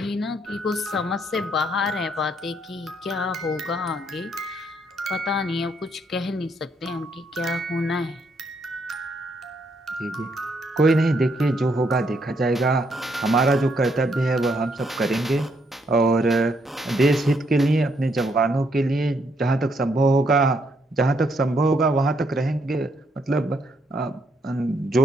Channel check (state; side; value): normal; both; correlation 0.73